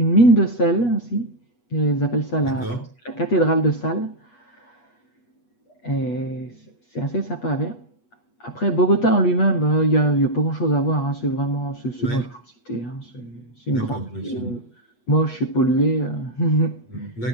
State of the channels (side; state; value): right; late; 8.3 ms